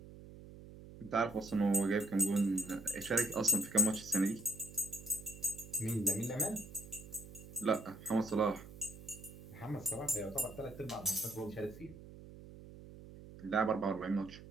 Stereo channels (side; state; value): right; noise; hum, 16 dB below the sound